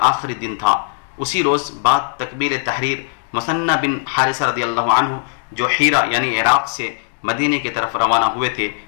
آخری دن تھا۔ اسی روز بعد تکبیر تحریر مثنى بن حارثہ رضی اللہ عنہ جو حیرہ یعنی عراق سے مدینہ کی طرف روانہ ہوئے تھے،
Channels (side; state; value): right; silent; digital silence